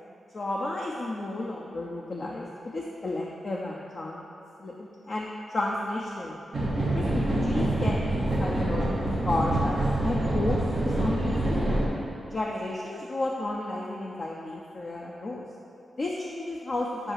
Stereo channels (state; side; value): normal; both; correlation 0.89